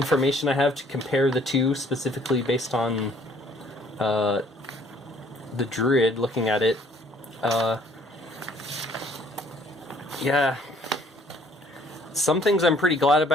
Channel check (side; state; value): both; normal; correlation 0.60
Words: I have to compare the two, specifically based on the druid. Looking at it, yeah, some things I'm pretty glad